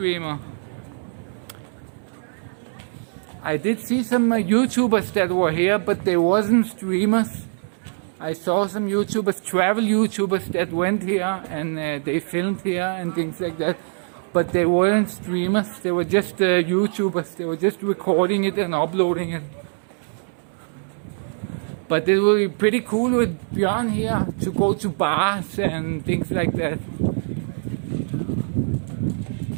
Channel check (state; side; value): silent; left; digital silence